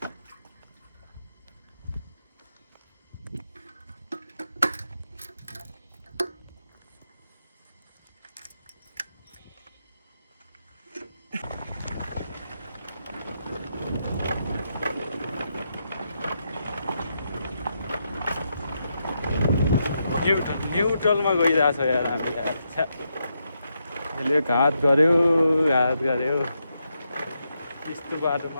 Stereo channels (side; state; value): both; inverted; correlation -0.82